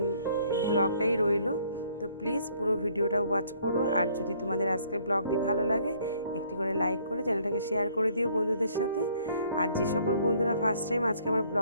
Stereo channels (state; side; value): inverted; both; correlation -0.62